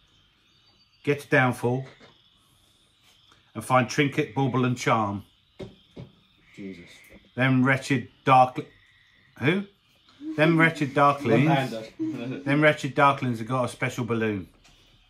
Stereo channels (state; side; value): identical; both; correlation 1.00